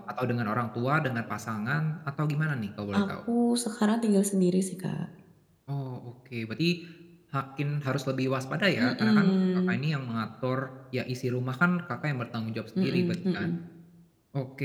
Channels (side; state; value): both; identical; correlation 1.00